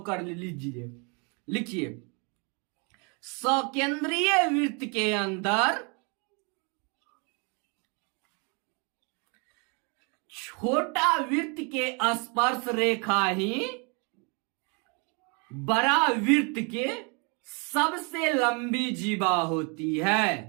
कर लीजिए, लिखिए। सकेंद्रीय वृत्त के अंदर छोटा वृत्त के स्पर्श रेखा ही बड़ा वृत्त के सबसे लंबी जीवा होती है।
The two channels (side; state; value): left; quieter; 33.7 dB